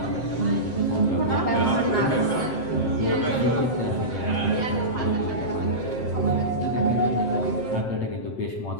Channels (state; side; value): late; right; 7.7 ms